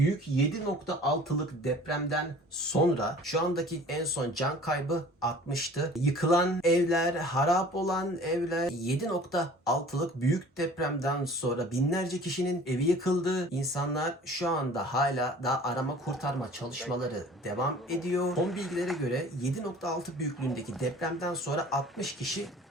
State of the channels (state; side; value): normal; both; correlation 0.47